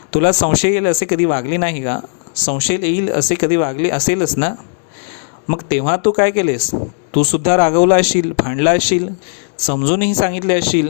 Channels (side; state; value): right; silent; digital silence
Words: तुला संशय येईल असे कधी वागली नाही का? संशय येईल असे कधी वागली असेलच ना? मग तेव्हा तू काय केलेस? तू सुद्धा रागवला असशील, भांडला असशील, समजूनही सांगितले असशील,